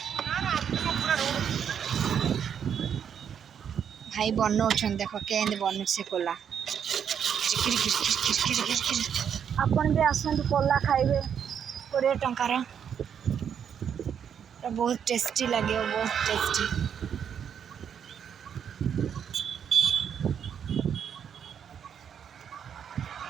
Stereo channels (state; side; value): quieter; left; 8.1 dB